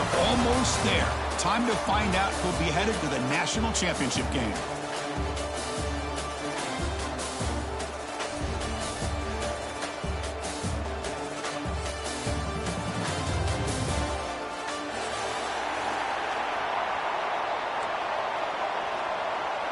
almost there. Time to find out who'll be headed to the national championship game.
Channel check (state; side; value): identical; both; correlation 1.00